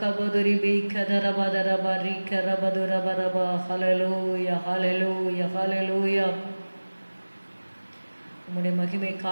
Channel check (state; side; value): inverted; both; correlation -1.00